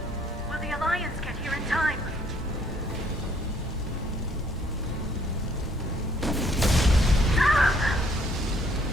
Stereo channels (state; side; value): normal; both; correlation 0.64